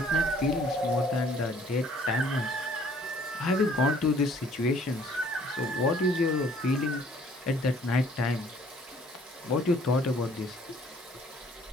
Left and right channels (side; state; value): both; normal; correlation 0.58